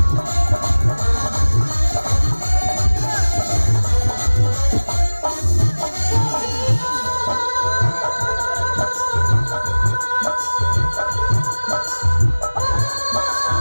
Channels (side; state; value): both; inverted; correlation -1.00